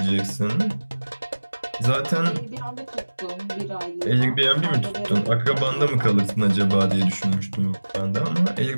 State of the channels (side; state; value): both; inverted; correlation -1.00